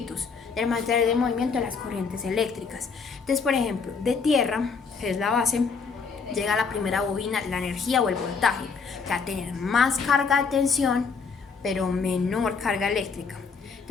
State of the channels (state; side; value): quieter; right; 5.3 dB